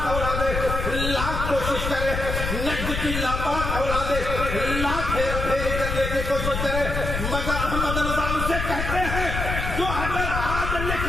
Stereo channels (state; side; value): noise; left; rumble, 3 dB below the sound